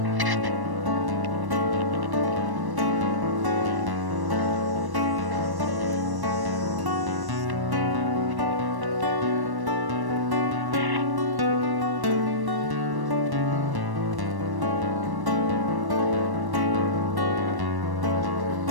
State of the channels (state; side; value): late; left; 1.1 ms